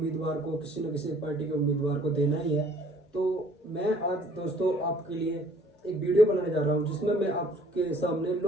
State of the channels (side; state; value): both; normal; correlation 0.57